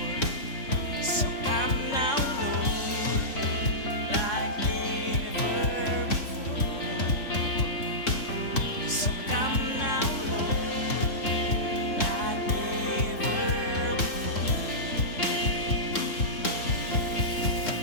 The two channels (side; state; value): right; late; 3.6 ms